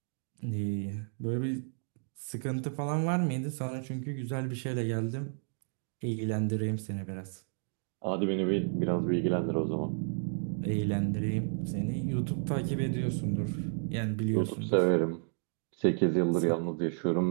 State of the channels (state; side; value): silent; left; 56 dB below the other